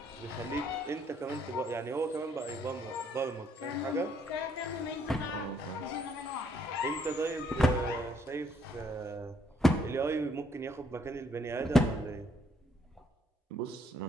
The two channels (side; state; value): both; normal; correlation 0.68